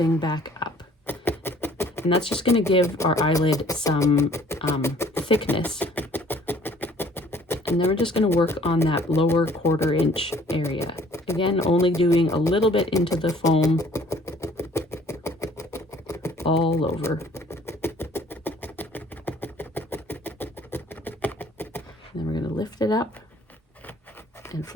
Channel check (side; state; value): both; normal; correlation 0.55